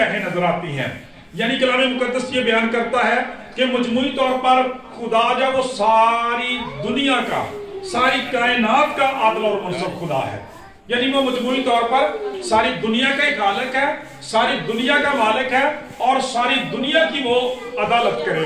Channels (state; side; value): identical; both; correlation 1.00